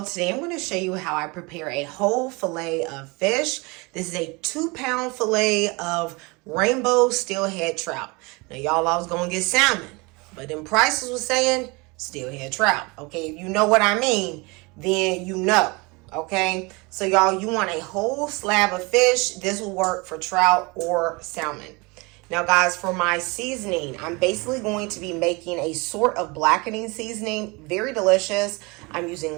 today I'm going to show you how I prepare a whole fillet of fish. This is a 2-pound fillet of rainbow steelhead trout. Now y'all, I was going to get salmon, but then prices was saying steelhead trout. Okay, if you know what I mean, then you know. Okay, so y'all, you want a whole slab of fish. This will work for trout or salmon. Now guys, for my seasoning, I'm basically going to be making a sort of blackening seasoning. Very delicious. I'm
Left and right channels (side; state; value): left; quieter; 26.8 dB